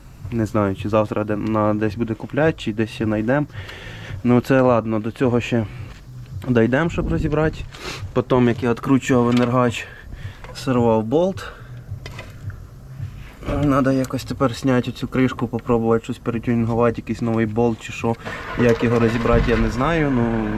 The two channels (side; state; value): both; identical; correlation 1.00